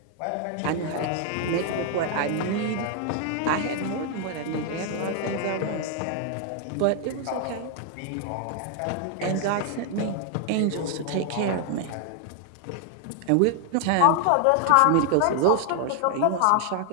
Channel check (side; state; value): both; different; correlation 0.00